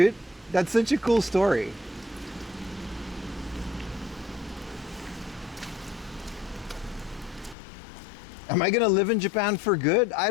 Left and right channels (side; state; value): right; drops out; at 7.6 s